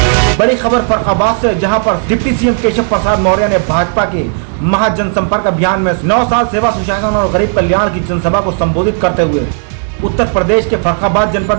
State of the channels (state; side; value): silent; left; 63 dB below the other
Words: बड़ी खबर फर्रुखाबाद से, जहां पर डिप्टी सीएम केशव प्रसाद मौर्य ने भाजपा के महाजनसंपर्क अभियान में 9 साल सेवा सुशासन और गरीब कल्याण की जनसभा को संबोधित करते हुए उत्तर प्रदेश के फर्रुखाबाद जनपद